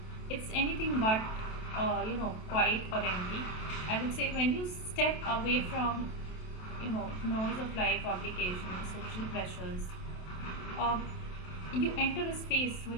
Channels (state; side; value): late; right; 27 ms